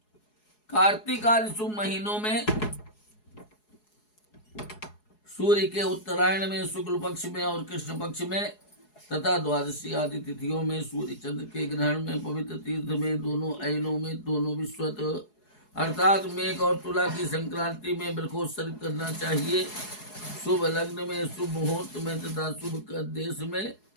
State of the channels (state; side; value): late; right; 4.7 ms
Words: कार्तिक आदि शुभ महीनों में सूर्य के उत्तरायण में, शुक्ल पक्ष में और कृष्ण पक्ष में तथा द्वादशी आदि तिथियों में, सूर्य चंद्र के ग्रहण में, पवित्र तीर्थ में, दोनों अयनों में, दोनों विश्वत अर्थात मेघ और तुला की संक्रांति में वृक्षोत्सर्ग करना चाहिए। शुभ लग्न में, शुभ मुहूर्त में तथा शुभ देश में